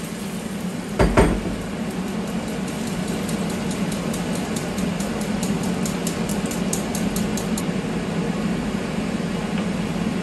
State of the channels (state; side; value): identical; both; correlation 1.00